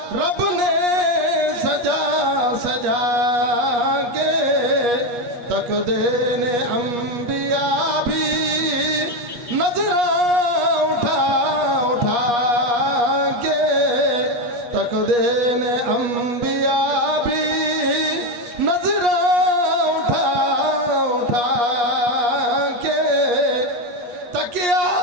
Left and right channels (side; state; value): left; late; 8.4 ms